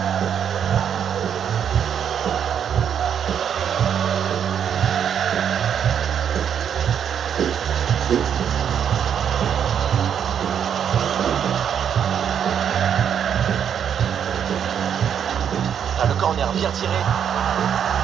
Ah, le corner bien tiré.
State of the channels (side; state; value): left; quieter; 8.4 dB